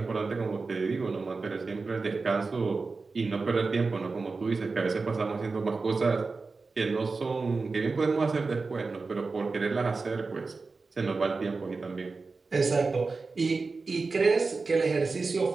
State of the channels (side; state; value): left; quieter; 4.1 dB